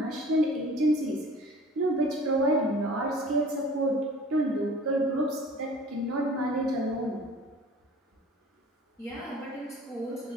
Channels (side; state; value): both; normal; correlation 0.47